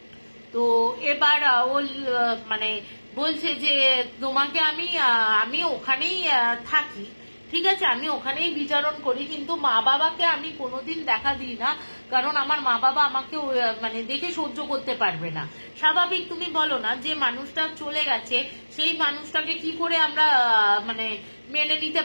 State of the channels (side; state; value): both; inverted; correlation -1.00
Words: তো এবার ও মানে বলছে যে তোমাকে আমি ওখানেই থাকি, ঠিক আছে, আমি ওখানেই বিচরণ করি, কিন্তু মা বাবাকে আমি কোনোদিন দেখা দিই না, কারণ আমার মা বাবা আমাকে মানে দেখে সহ্য করতে পারবে না। স্বাভাবিক, তুমি বলো না, যে মানুষটা চলে গেছে সেই মানুষটাকে কি করে আমরা মানে মেনে নিতে